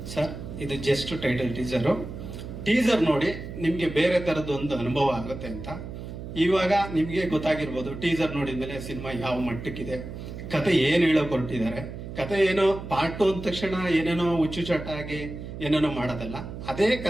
ಸರ್ ಇದು ಜಸ್ಟ್ ಟೈಟಲ್ ಟೀಸರ್ ನೋಡಿ ನಿಮಗೆ ಬೇರೆ ಥರದ್ದೊಂದು ಅನುಭವ ಆಗುತ್ತೆ ಅಂತ. ಇವಾಗ ನಿಮಗೆ ಗೊತ್ತಾಗಿರ್ಬೋದು, ಟೀಸರ್ ನೋಡಿದ್ಮೇಲೆ ಸಿನಿಮಾ ಯಾವ ಮಟ್ಟಕ್ಕಿದೆ, ಕತೆ ಏನು ಹೇಳೋಕೆ ಹೊರಟಿದ್ದಾರೆ. ಕತೆ ಏನೋ ಪಾರ್ಟ್ 2 ಅಂದ ತಕ್ಷಣ ಏನೇನೋ ಹುಚ್ಚುಚಾಟ ಆಗಿ ಏನೇನೋ ಮಾಡೋದಲ್ಲ, ಅದೇ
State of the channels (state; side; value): noise; right; hum, 10 dB below the sound